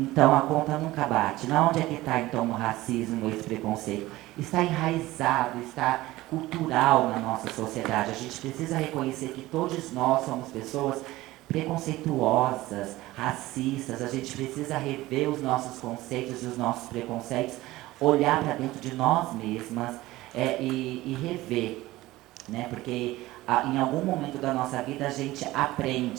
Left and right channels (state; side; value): quieter; left; 17.8 dB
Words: a conta nunca bate. Na onde é que está então o racismo, esse preconceito? Está enraizado, está cultural na nossa sociedade. A gente precisa reconhecer que todos nós somos pessoas preconceituosas, racistas. A gente precisa rever os nossos conceitos e os nossos preconceitos, olhar para dentro de nós mesmas e rever, né? Porque em algum momento da nossa vida a gente